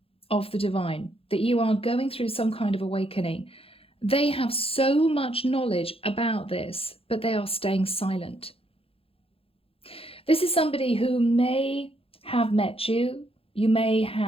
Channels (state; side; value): late; right; 0.27 ms